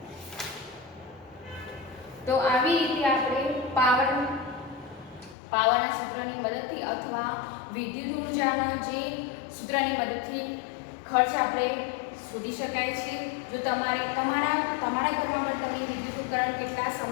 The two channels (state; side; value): drops out; right; at 5.4 s